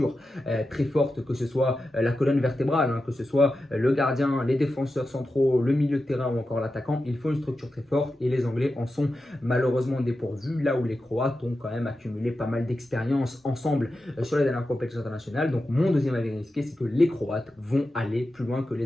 très forte, que ce soit la colonne vertébrale, hein, que ce soit le gardien, les défenseurs centraux, le milieu de terrain ou encore l'attaquant. Il faut une structure très forte et les Anglais en sont malheureusement dépourvus, là où les Croates ont quand même accumulé pas mal d'expérience ensemble sur les dernières compétitions internationales. Donc mon deuxième avis risqué, c'est que les Croates vont aller plus loin que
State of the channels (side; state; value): both; normal; correlation 0.91